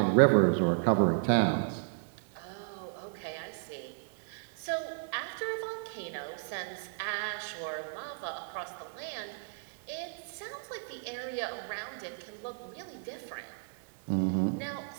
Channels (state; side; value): silent; left; digital silence